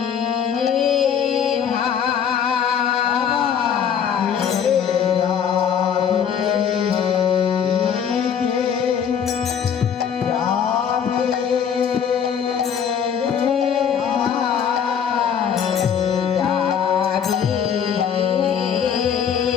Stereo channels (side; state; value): right; quieter; 7.9 dB